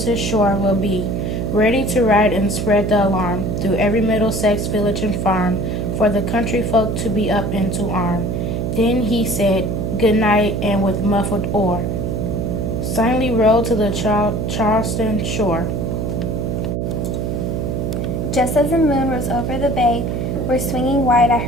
shore will be, ready to ride and spread the alarm through every Middlesex village and farm, for the country folk to be up and to arm. Then he said, good night, and with muffled oar, silently rowed to the Charleston shore. Just as the moon rose over the bay, where swinging wide at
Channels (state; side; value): noise; right; hum, 1 dB below the sound